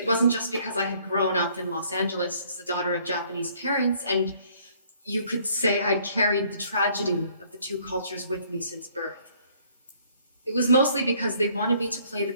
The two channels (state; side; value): inverted; both; correlation -0.62